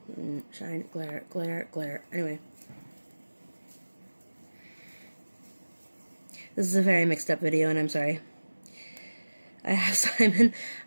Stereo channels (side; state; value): both; inverted; correlation -1.00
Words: Shine, glare, glare, glare. Anyway. This is a very mixed up video, and I'm sorry. I